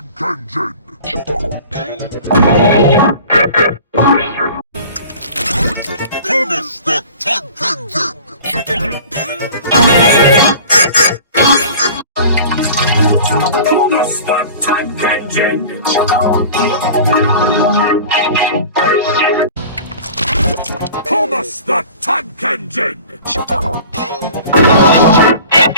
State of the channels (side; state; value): both; inverted; correlation -0.42